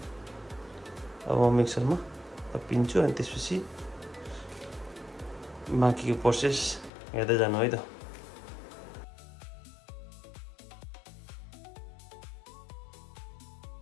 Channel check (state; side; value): drops out; right; at 6.9 s